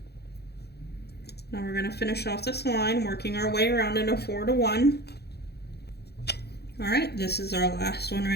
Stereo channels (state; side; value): late; right; 0.48 ms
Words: Now we're going to finish off this line, working our way around in a 4 to 1. All right, this is our last one